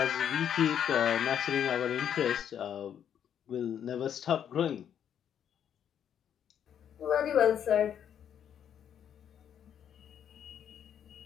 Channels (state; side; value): quieter; right; 9.1 dB